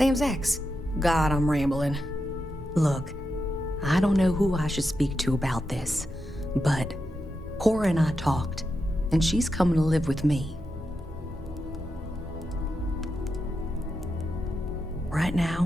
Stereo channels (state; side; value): normal; both; correlation 0.87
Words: ex. God, I'm rambling. Look, I don't know who I should speak to about this, but Cora and I talked, and she's coming to live with me. Right